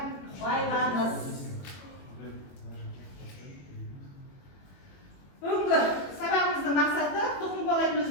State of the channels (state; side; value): late; right; 21 ms